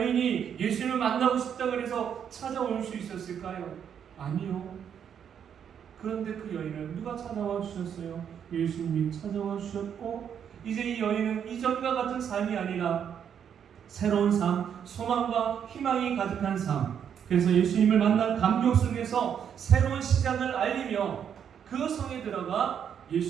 예수님을 만나고 싶다고 해서 찾아올 수 있었을까요? 아니요. 그런데 그 여인을 누가 찾아와 주셨어요? 예수님이 찾아와 주셨고, 이제 이 여인은 이전과 같은 삶이 아니라 새로운 삶, 소망과 희망이 가득한 삶, 그래서 예수님을 만난 감격 속에서 새로운 시작을 알리며 그 성에 들어가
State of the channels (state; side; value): quieter; left; 8.3 dB